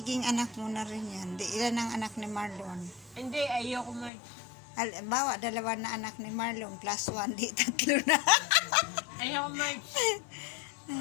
anak mo na rin yan. Ilan ang anak ni Marlon? Hindi, ayoko, Mark. Bawa, dalawa na anak ni Marlon, plus 1, di 3 na. Ayoko, Mark.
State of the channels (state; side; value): drops out; right; at 4.1 s